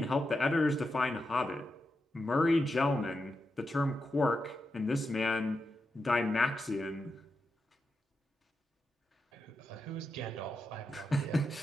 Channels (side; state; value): both; normal; correlation 0.87